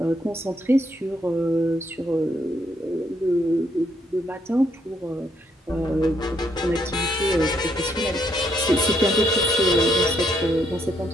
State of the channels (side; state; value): both; normal; correlation 0.73